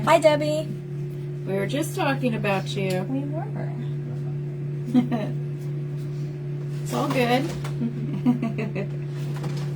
Hi, Debbie. We were just talking about you. We were. It's all good.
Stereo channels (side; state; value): both; identical; correlation 1.00